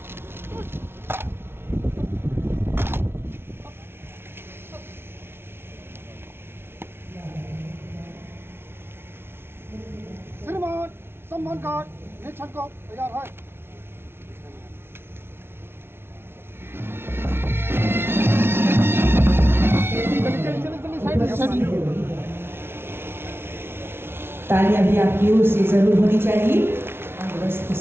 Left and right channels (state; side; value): late; left; 0.12 ms